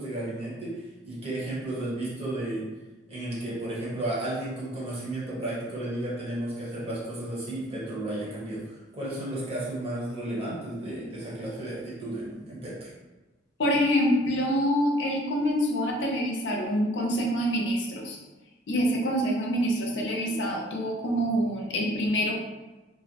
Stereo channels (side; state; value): both; normal; correlation 0.55